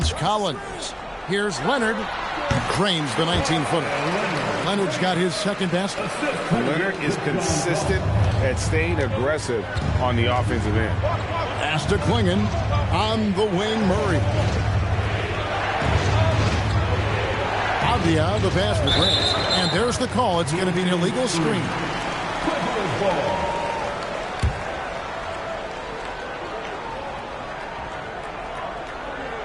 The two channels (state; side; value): identical; both; correlation 1.00